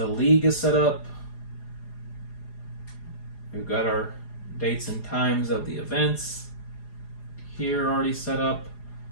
league is set up. We've got our dates and times of the events here already set up.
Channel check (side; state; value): right; late; 4.9 ms